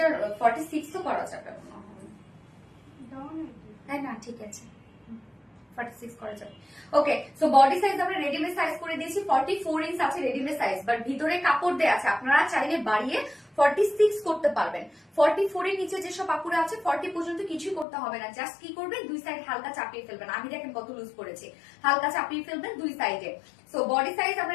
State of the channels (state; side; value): drops out; right; at 17.9 s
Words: 46 তো করা যাবে মনে হয়, হ্যাঁ না ঠিক আছে 46 করা যাবে। ওকে সো বডি সাইজ আমরা রেডিমেড সাইজ করে দিয়েছি 44 ইঞ্চ আছে রেডিমেড সাইজ, বাট ভিতরে কাপড় দেয়া আছে, আপনারা চাইলে বাড়িয়ে 46 করতে পারবেন। 44 এর নিচে যেসব কাপড় আছে 40 পর্যন্ত কিছুই করতে হবে না, জাস্ট কি করবেন দুই সাইড হালকা চাপিয়ে ফেলবেন। আমি দেখেন কত লুজ করেছি, হালকা চাপিয়ে ফেলবেন দুই সাইডে। সো বডি সাইজ আমরা